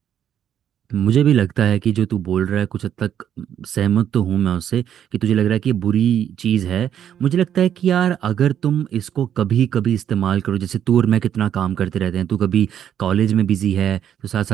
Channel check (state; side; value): quieter; left; 9.7 dB